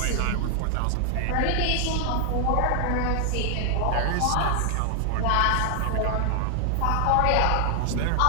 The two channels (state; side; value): different; both; correlation 0.00